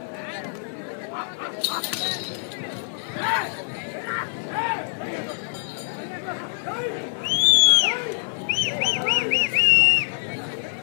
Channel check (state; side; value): silent; right; digital silence